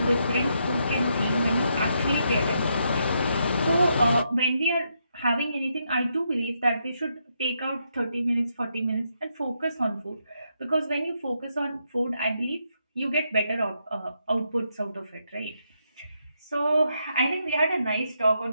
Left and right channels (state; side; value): inverted; both; correlation -0.79